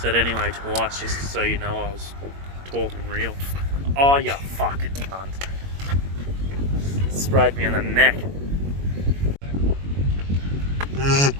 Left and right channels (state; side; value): late; left; 21 ms